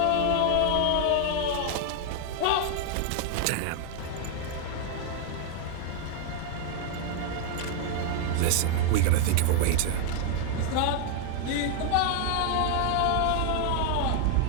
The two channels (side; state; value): both; different; correlation 0.00